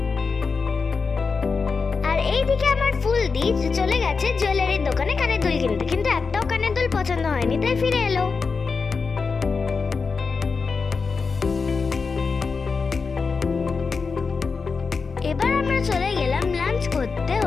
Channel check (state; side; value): quieter; right; 4.8 dB